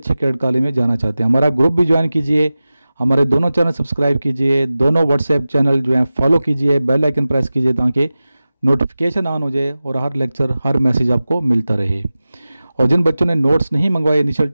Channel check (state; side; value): inverted; both; correlation -0.96